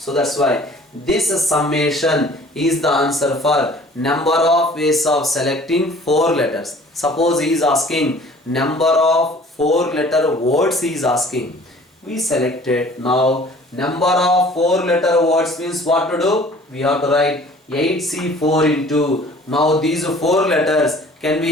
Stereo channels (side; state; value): both; normal; correlation 0.50